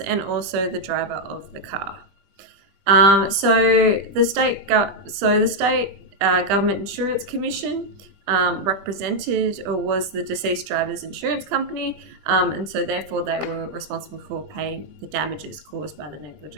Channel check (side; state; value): left; late; 20 ms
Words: also the driver of the car. So the state government insurance commission represented or was the deceased driver's insurance company, and so therefore they were responsible for paying the damages caused by the